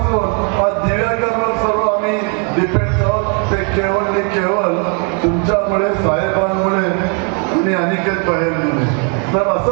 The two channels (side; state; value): left; quieter; 37.1 dB